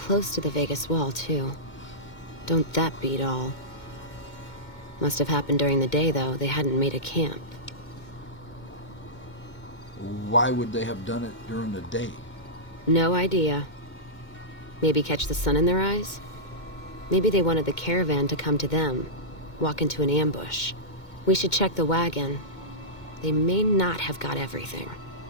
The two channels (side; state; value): right; late; 2.2 ms